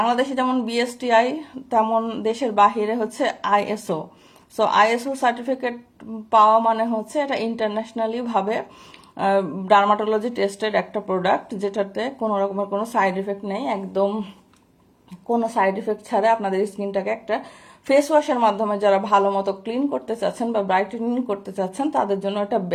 যেমন BSTI তেমন দেশের বাহিরে হচ্ছে ISO। সো ISO সার্টিফিকেট পাওয়া মানে হচ্ছে এটা ইন্টারন্যাশনালি ভাবে ডার্মাটোলজি টেস্টেড একটা প্রোডাক্ট, যেটাতে কোনো রকমের কোনো সাইড এফেক্ট নেই। একদম কোনো সাইড এফেক্ট ছাড়া আপনাদের স্কিনটাকে একটা ফেস ওয়াশের মাধ্যমে যারা ভালো মতো ক্লিন করতে চাচ্ছেন বা ব্রাইটেনিং করতে চাচ্ছেন তাদের জন্য এটা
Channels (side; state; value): both; identical; correlation 1.00